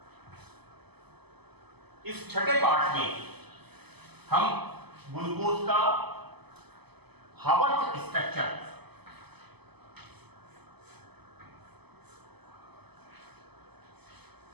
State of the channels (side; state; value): left; late; 0.98 ms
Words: इस छठे पार्ट में हम ग्लूकोज का हावर्थ स्ट्रक्चर